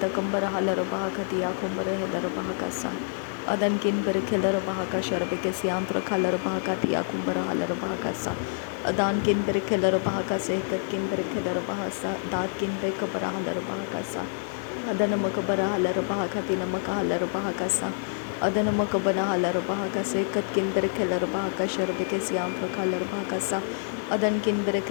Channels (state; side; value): silent; right; 60 dB below the other